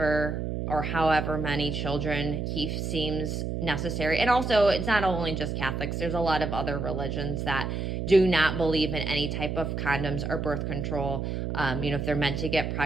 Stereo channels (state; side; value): noise; right; hum, 3 dB below the sound